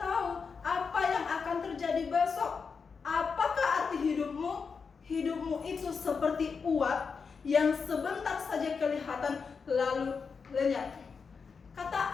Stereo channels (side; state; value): right; quieter; 5.4 dB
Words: apa yang akan terjadi besok. Apakah arti hidupmu? Hidupmu itu seperti uap yang sebentar saja kelihatan lalu lenyap. Kata